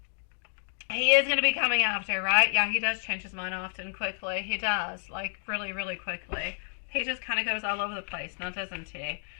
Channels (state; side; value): silent; right; digital silence